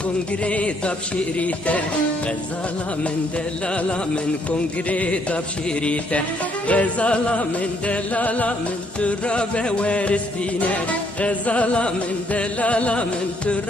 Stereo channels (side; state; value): both; normal; correlation 0.69